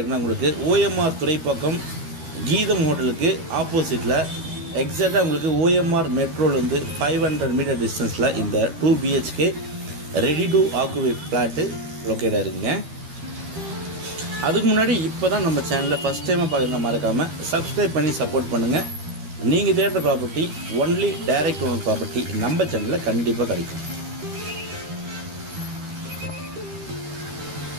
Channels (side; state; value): left; late; 13 ms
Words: உங்களுக்கு OMR துறைப்பாக்கம் கீதம் ஹோட்டலுக்கு ஆப்போசிட்டில் எக்ஸாக்டாக உங்களுக்கு OMR மெட்ரோலேருந்து 500 மீட்டர் டிஸ்டன்ஸில் இந்த 2 BHK ready to occupy flat locate ஆகிருக்குங்க. அதுக்கு முன்னாடி இப்போ தான் நம்ம சேனலில் ஃபஸ்ட் டைமாக பார்க்குறத மறக்காமல் சப்ஸ்கிரைப் பண்ணி சப்போர்ட் பண்ணுங்கள். நீங்கள் தேடுற property only direct owner property நம்ம சேனலில் கண்டிப்பாக கிடைக்கும்.